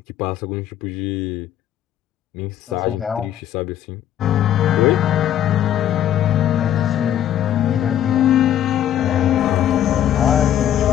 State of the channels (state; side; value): quieter; right; 11.1 dB